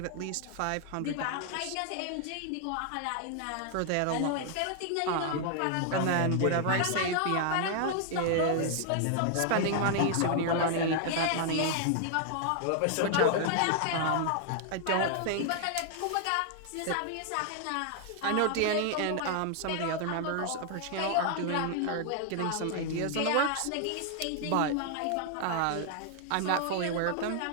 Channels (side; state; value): both; different; correlation 0.00